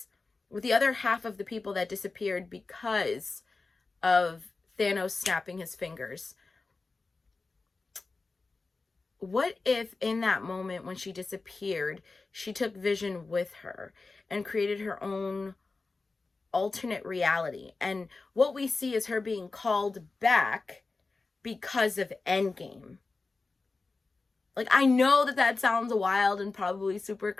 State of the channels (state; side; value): quieter; right; 3.8 dB